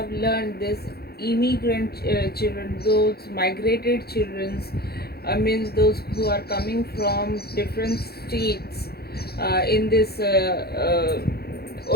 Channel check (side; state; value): right; late; 0.46 ms